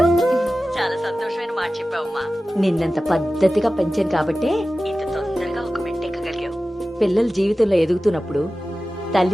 చాలా సంతోషమైన మాట చెప్పావమ్మా. నిన్నంత పద్ధతిగా పెంచాను కాబట్టే ఇంత తొందరగా ఒక మెట్టెక్కగలిగావు. పిల్లల జీవితంలో ఎదుగుతున్నప్పుడు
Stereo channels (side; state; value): both; normal; correlation 0.95